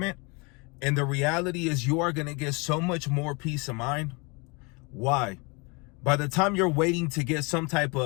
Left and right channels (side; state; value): right; quieter; 29.6 dB